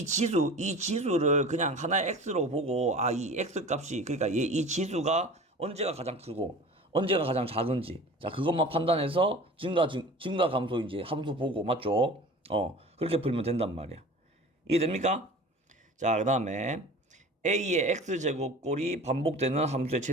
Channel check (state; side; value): normal; both; correlation 0.39